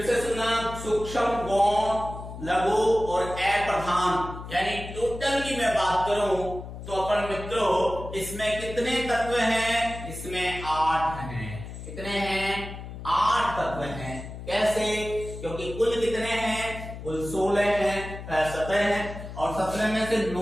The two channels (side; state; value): left; noise; hum, 11 dB below the sound